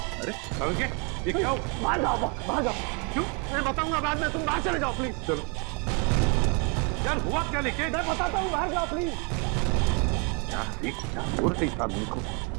अरे ये क्या? बाहर जाओ। क्यों? मैं बताऊंगा बाद में, तुम बाहर चले जाओ प्लीज। चलो यार, हुआ क्या? लेके मैं बताता हूँ, बाहर जाओ प्लीज। क्या हो रही इस आदमी को?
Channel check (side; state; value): left; quieter; 34.1 dB